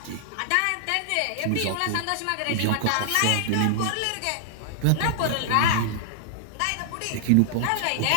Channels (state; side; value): different; both; correlation -0.01